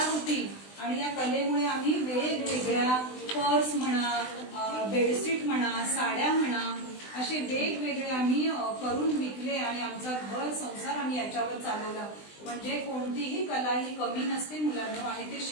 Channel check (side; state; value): right; late; 20 ms